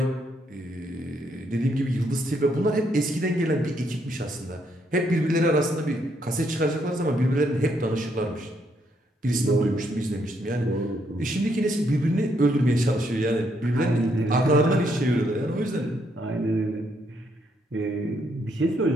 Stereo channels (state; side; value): normal; both; correlation 0.74